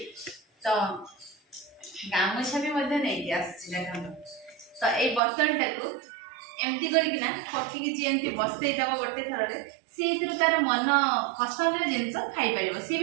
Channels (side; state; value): left; drops out; at 5.2 s